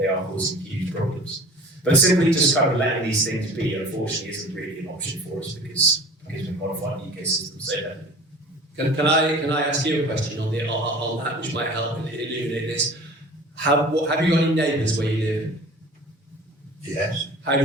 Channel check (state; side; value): normal; both; correlation 0.42